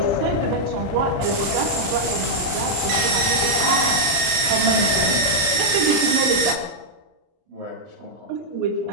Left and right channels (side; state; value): left; late; 32 ms